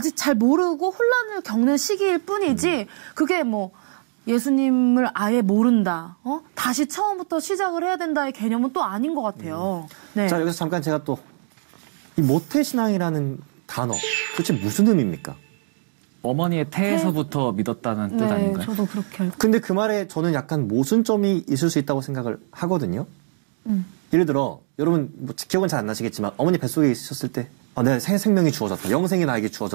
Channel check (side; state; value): left; silent; digital silence